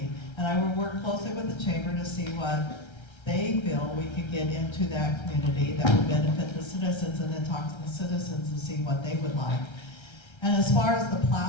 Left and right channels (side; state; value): right; late; 1.3 ms